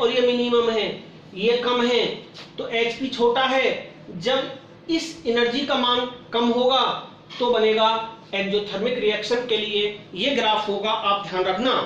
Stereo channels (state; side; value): identical; both; correlation 1.00